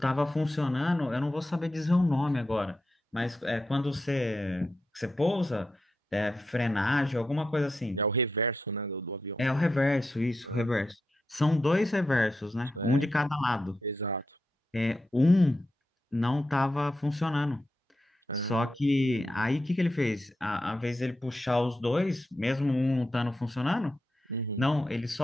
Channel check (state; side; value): normal; both; correlation 0.87